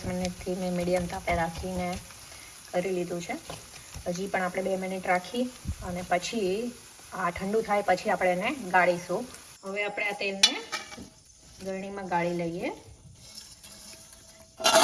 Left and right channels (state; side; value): identical; both; correlation 1.00